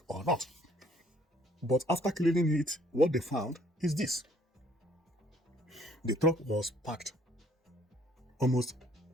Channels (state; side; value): normal; both; correlation 0.61